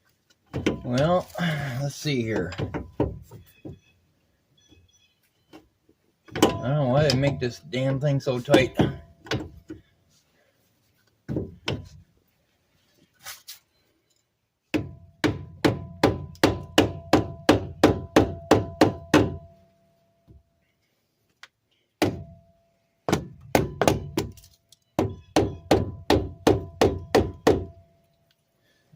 Well, let's see here. I don't know why they make this damn thing so tight.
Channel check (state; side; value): identical; both; correlation 1.00